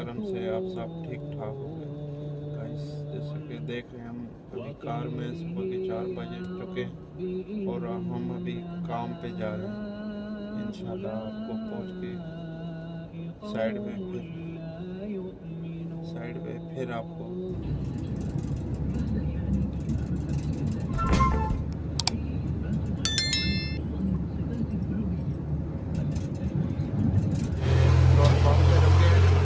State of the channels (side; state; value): both; identical; correlation 1.00